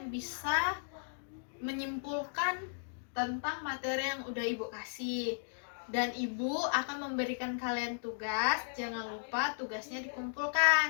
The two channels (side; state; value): right; silent; digital silence